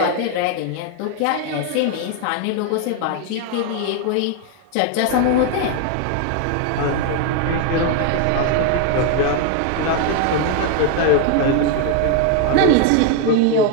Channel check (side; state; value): both; different; correlation 0.01